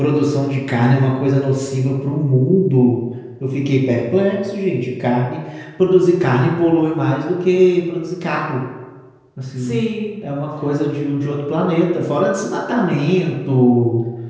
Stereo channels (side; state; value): both; identical; correlation 1.00